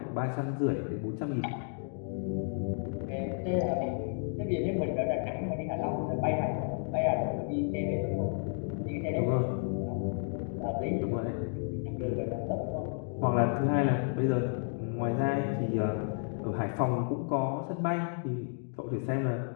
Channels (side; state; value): right; silent; 56 dB below the other